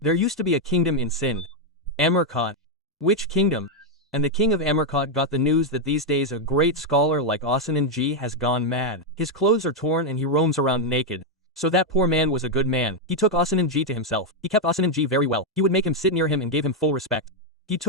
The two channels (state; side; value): normal; both; correlation 0.01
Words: used to be a kingdom in Sindh. Amarkot. Which kingdom? And the king of Amarkot got the news that these days a great scholar like Ashananji has gone mad. His clothes are torn and he roams around naked. So that poor man was a good man. He took Ashananji to himself. He kept Ashananji very well. He would make him sit near him and gave him full respect. He